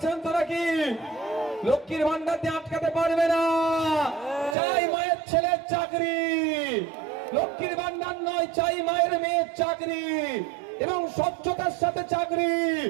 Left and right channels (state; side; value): drops out; left; at 4.5 s